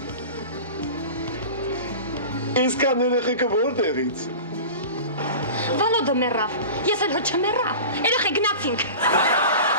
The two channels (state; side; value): inverted; both; correlation -0.34